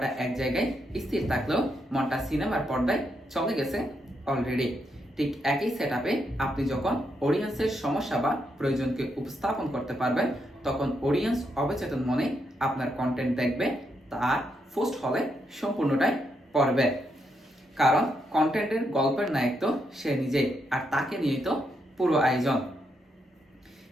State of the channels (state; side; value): normal; both; correlation 0.80